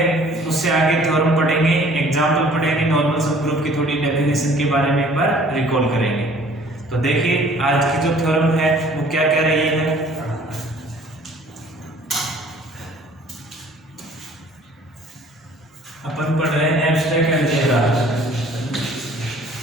उससे आगे थ्योरम पढ़ेंगे, एग्जाम्पल पढ़ेंगे, नॉर्मल सब ग्रुप की थोड़ी डेफिनेशन के बारे में एक बार रिकॉल करेंगे। तो देखिए आज की जो थ्योरम है वो क्या कह रही है। अपन पढ़ रहे हैं abstract algebra.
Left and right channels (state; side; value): normal; both; correlation 0.53